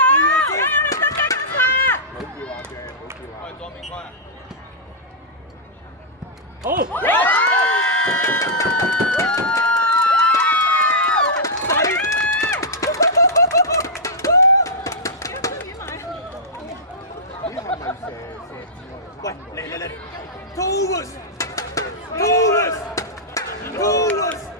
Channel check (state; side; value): normal; both; correlation -0.10